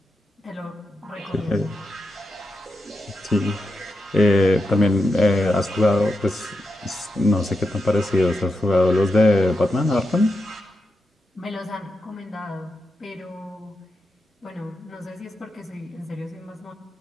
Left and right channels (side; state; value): both; normal; correlation 0.87